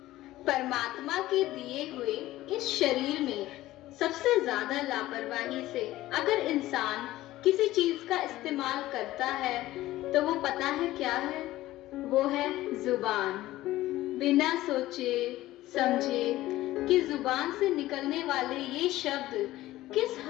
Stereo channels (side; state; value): right; quieter; 16.1 dB